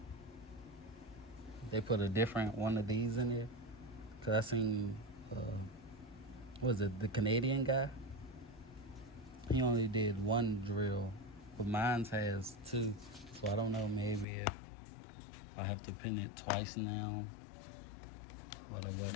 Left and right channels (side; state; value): right; drops out; at 14.2 s